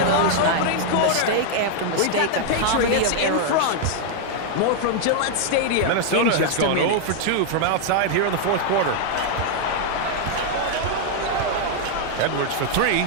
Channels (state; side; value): different; both; correlation 0.00